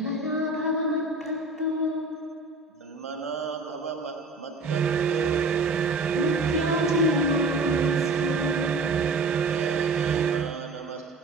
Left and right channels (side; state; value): left; quieter; 3.3 dB